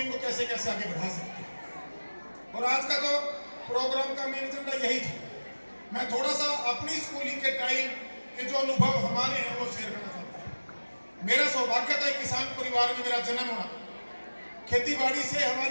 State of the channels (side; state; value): both; inverted; correlation -1.00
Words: इनको कैसे कैसे आगे बढ़ा सकते हैं। और आज का जो प्रोग्राम का मेन एजेंडा यही था, मैं थोड़ा सा अपनी स्कूलिंग के टाइम के जो अनुभव हमारे हैं वो शेयर करना चाहता हूँ। मेरा सौभाग्य था किसान परिवार में मेरा जन्म होना, खेती बाड़ी से